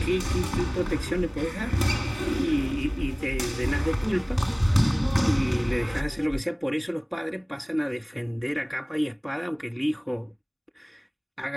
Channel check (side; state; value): both; identical; correlation 1.00